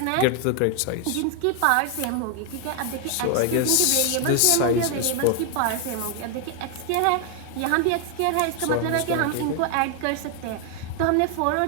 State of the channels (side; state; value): both; different; correlation 0.00